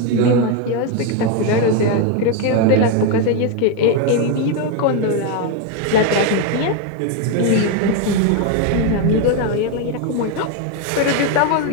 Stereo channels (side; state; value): both; different; correlation 0.02